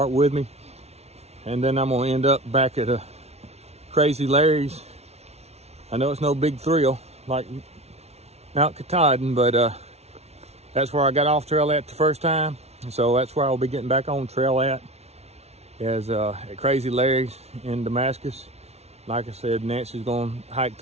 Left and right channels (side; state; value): left; late; 0.31 ms